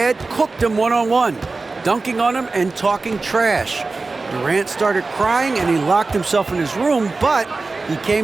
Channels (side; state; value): left; quieter; 3.7 dB